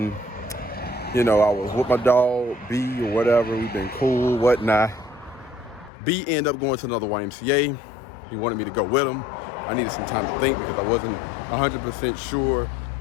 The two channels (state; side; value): drops out; right; at 5.9 s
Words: I was with my dog B or whatever. We've been cool, whatnot. B ended up going to another YMCA. He wanted me to go with him. I needed some time to think because I wasn't 100% sure.